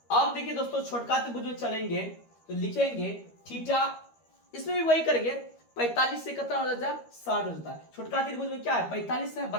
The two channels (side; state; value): right; late; 13 ms